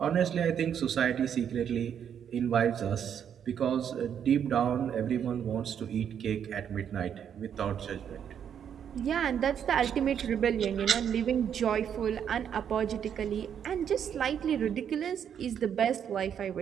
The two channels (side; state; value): left; quieter; 8.5 dB